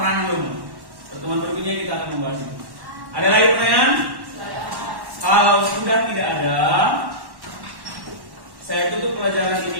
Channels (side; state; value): left; late; 1.1 ms